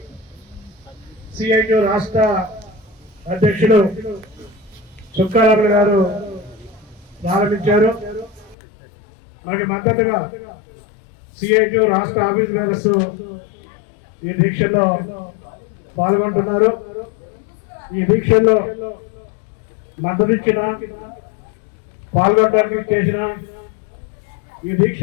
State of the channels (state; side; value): drops out; right; at 8.6 s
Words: సిఐటి రాష్ట్ర అధ్యక్షుడు చుక్కారాములు గారు ప్రారంభించారు. మనకి మద్దతుగా సిఐటి రాష్ట్ర ఆఫీస్ బేరర్స్ ఈ దీక్షల్లో పాల్గొంటున్నారు. ఈ దీక్షల్లో మద్దతు ఇచ్చిన పాల్గొనడానికి చేసిన ఈ